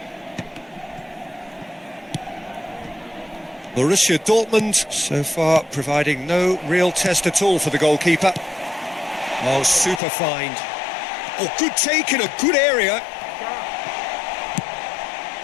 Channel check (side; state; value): right; drops out; at 10.0 s